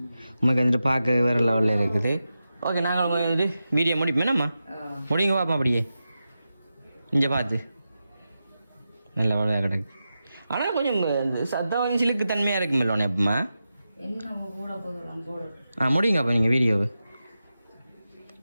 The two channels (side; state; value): both; inverted; correlation -0.91